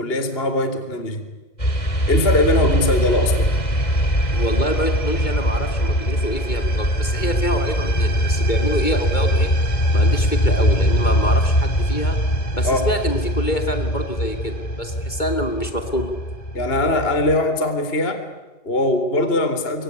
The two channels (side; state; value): right; late; 2.2 ms